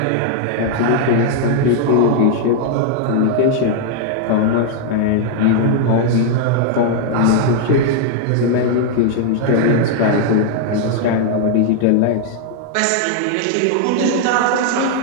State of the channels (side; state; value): both; different; correlation 0.00